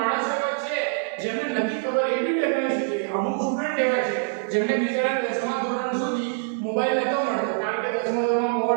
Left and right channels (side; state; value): left; silent; digital silence